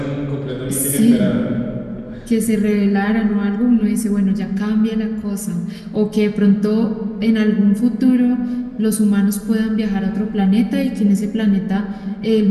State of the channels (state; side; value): identical; both; correlation 1.00